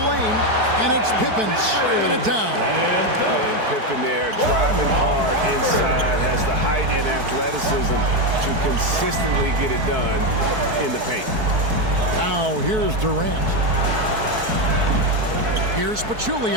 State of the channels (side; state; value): left; late; 4.6 ms